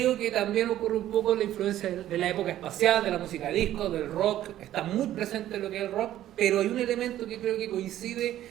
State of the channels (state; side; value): quieter; left; 12.9 dB